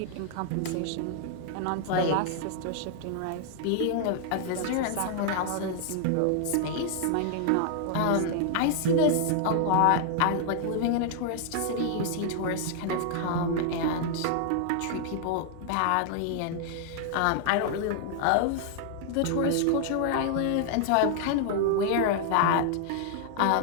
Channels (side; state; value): both; different; correlation 0.00